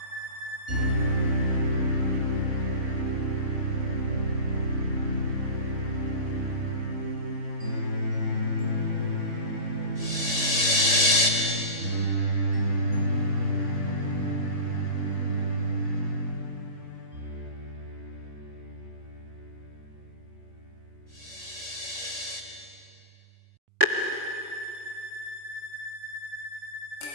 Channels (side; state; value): left; late; 3.5 ms